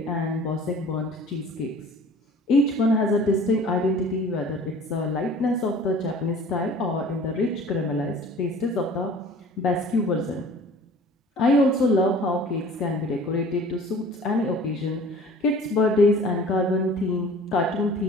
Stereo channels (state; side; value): normal; both; correlation 0.46